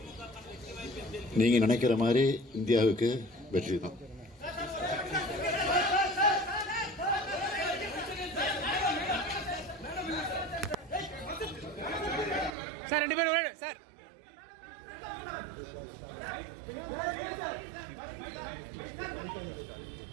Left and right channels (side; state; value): left; drops out; at 12.5 s